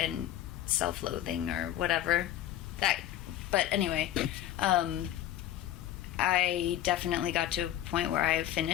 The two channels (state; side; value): quieter; right; 12.9 dB